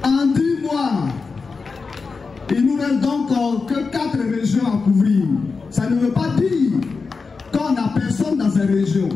En 10 mois, il nous reste donc que 4 régions à couvrir. Ça ne veut pas dire qu'on n'a personne dans ces régions.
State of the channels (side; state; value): right; quieter; 4.6 dB